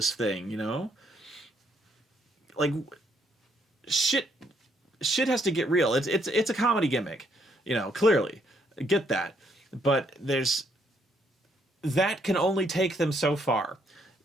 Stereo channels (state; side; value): normal; both; correlation 0.71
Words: thing, you know. Like, shit has to get real. It's a comedy gimmick, you know, clearly. Get that. But that can only take them so far.